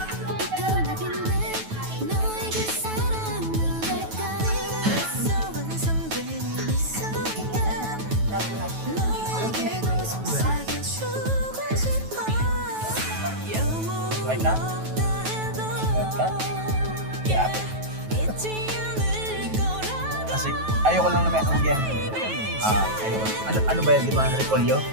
Like that? Like that? Yeah. Kasi ayoko lang naman yan. Ayoko. Ano ba yan, di ba? Repolyo?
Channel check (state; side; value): late; left; 9.2 ms